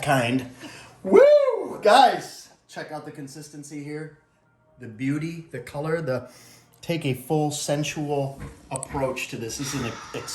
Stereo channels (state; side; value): identical; both; correlation 1.00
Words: kind. Woo! Guys, check out the consistency here. The beauty, the color, take a full sensual approach to this. This is an